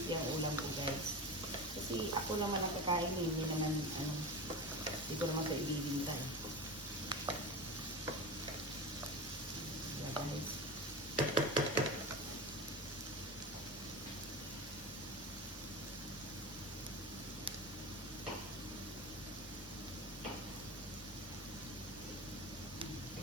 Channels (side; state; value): both; normal; correlation 0.26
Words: ang ulam ko guys. Kasi ako naman ang kakain, hindi naman hindi ko naman ito ibibinta. Yeah guys.